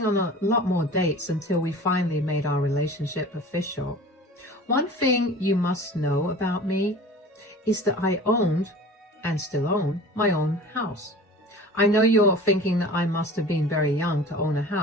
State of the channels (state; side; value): normal; both; correlation 0.41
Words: on a lot more dates until we finally made our relationship official. One thing you must know about me is that I owned, and still own, my own house. I know you're thinking that I must have been very young to own a